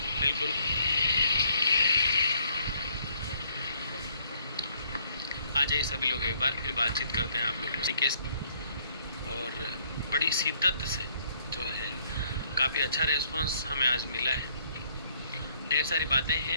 बिल्कुल आ जाइए सभी लोग, एक बार फिर बातचीत करते हैं आप लोगों से कैसे। और बड़ी शिद्दत से जो है काफ़ी अच्छा रिस्पांस हमें आज मिला है। ढेर सारी बातें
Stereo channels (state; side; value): inverted; both; correlation -0.65